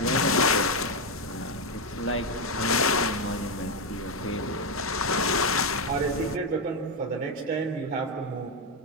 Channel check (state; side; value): normal; both; correlation 0.05